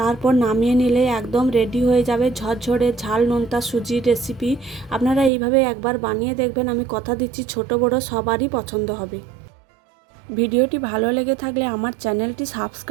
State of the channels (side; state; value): left; drops out; at 5.3 s